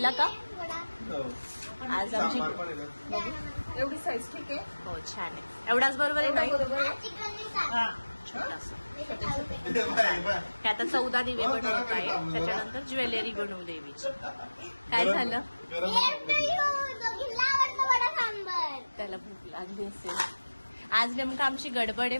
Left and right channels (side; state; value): both; inverted; correlation -1.00